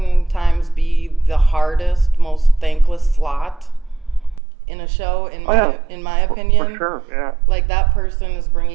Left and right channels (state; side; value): drops out; left; at 4.4 s